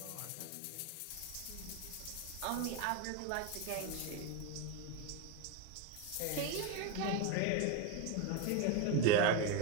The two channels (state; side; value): different; both; correlation 0.03